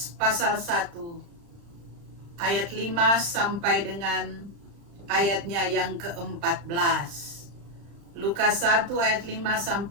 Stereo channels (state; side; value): late; left; 35 ms